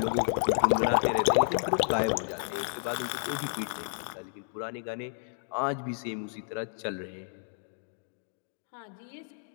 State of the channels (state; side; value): silent; right; digital silence